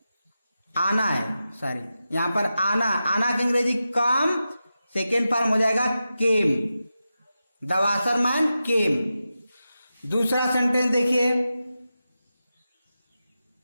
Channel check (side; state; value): both; inverted; correlation -0.91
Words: आना है, यहाँ पर आना का अंग्रेजी कम, सेकेंड फॉर्म हो जाएगा केम, द वाशरमैन केम। दूसरा सेंटेंस देखिए,